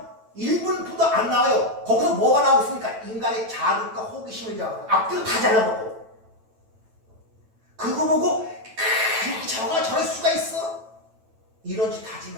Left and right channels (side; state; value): left; late; 9.0 ms